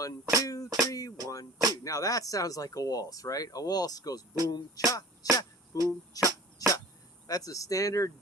2, 3. 1, 2. Now that sounds like a waltz, right? A waltz goes boom, cha, cha, boom, cha, cha. That's a standard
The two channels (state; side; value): normal; both; correlation 0.43